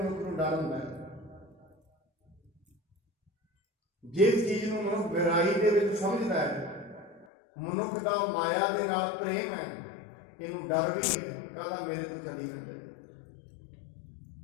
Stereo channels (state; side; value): drops out; right; at 7.2 s